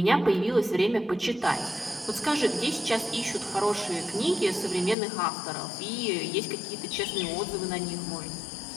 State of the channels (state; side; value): drops out; right; at 5.0 s